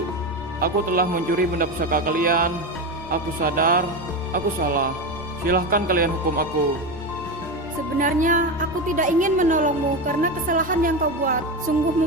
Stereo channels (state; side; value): normal; both; correlation 0.18